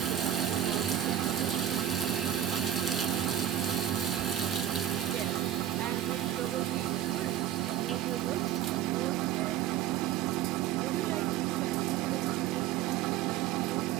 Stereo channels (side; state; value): left; quieter; 11.1 dB